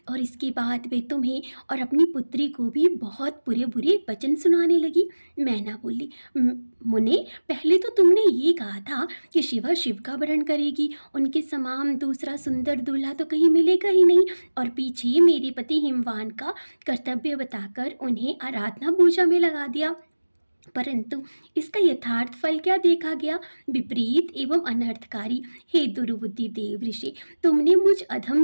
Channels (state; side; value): inverted; both; correlation -1.00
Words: और इसके बाद वे तुम्हें और अपनी पुत्री को भी बहुत बुरे बुरे वचन सुनाने लगी। मैना बोली, मुने, पहले तो तुमने ये कहा था कि शिवा शिव का वरण करेगी, उनके समान दूसरा सुंदर दूल्हा तो कहीं मिलेगा ही नहीं, और पीछे मेरे पति हिमवान का कर्तव्य बताकर उन्हें आराधना पूजा में लगा दिया। परंतु इसका यथार्थ फल क्या देखा गया? विपरीत एवं अनर्थकारी। हे दुर्बुद्धि देव ऋषि, तुमने मुझ अधम